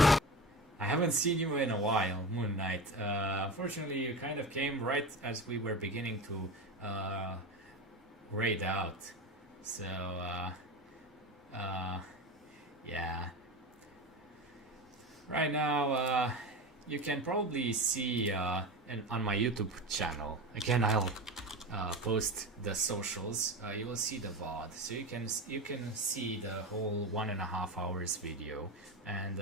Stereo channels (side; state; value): both; normal; correlation 0.25